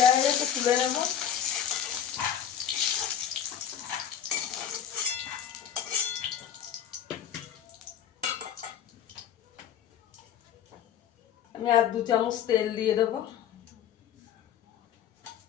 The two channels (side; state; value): right; quieter; 9.4 dB